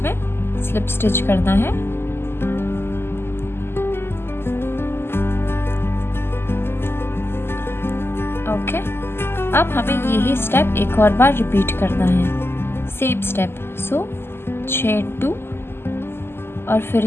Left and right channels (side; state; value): right; late; 0.12 ms